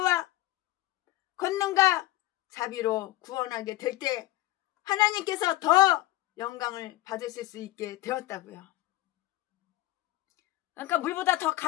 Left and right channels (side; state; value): right; quieter; 16.9 dB